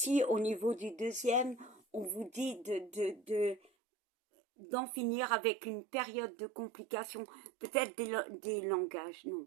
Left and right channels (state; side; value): drops out; left; at 3.7 s